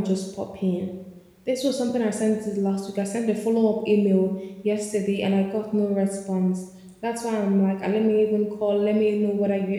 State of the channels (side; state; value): both; identical; correlation 1.00